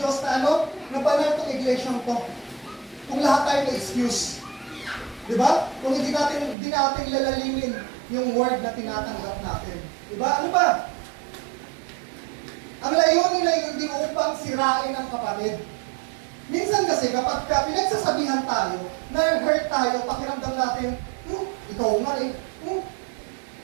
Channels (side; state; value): left; drops out; at 6.6 s